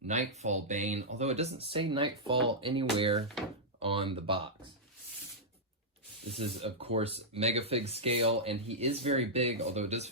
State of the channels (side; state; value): both; normal; correlation -0.08